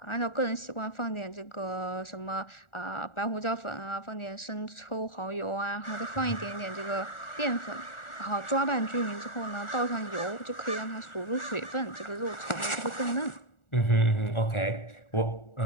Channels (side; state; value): right; late; 1.4 ms